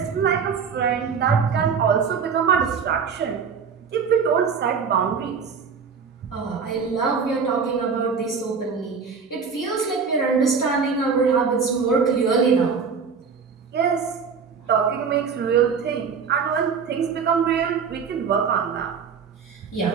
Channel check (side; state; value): left; quieter; 5.9 dB